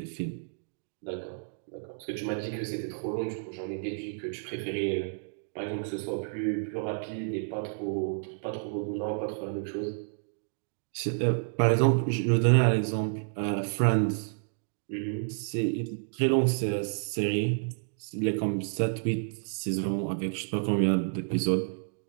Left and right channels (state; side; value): silent; left; digital silence